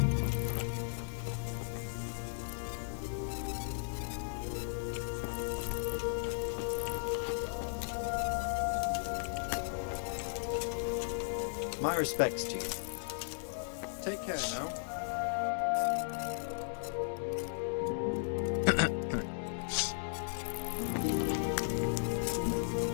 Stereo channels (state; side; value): silent; right; digital silence